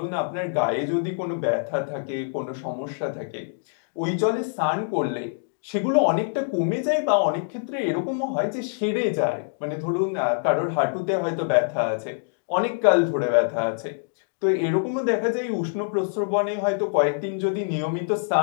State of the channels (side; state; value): right; silent; digital silence